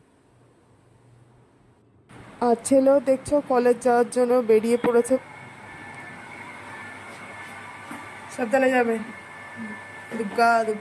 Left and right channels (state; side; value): identical; both; correlation 1.00